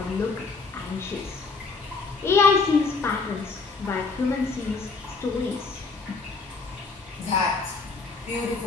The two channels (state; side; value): quieter; right; 4.3 dB